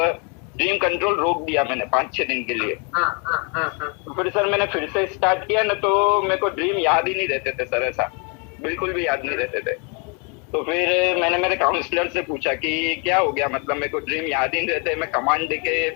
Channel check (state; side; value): quieter; right; 33.4 dB